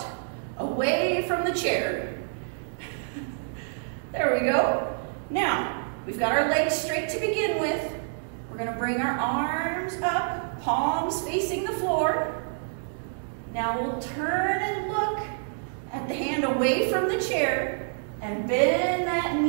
away from the chair. There we go. Now, we've got our legs straight to begin with. We're We're going to bring our arms up, palms facing the floor. Now we'll turn and look at the hand away from the chair and bend that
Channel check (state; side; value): silent; left; digital silence